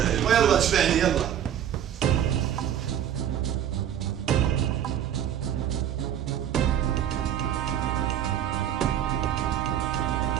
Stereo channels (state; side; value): quieter; left; 10.0 dB